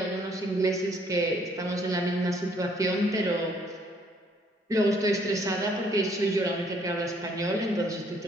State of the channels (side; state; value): both; normal; correlation 0.65